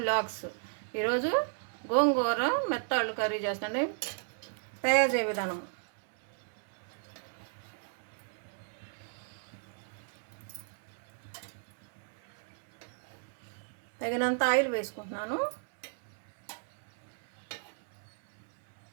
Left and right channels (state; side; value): silent; left; 55 dB below the other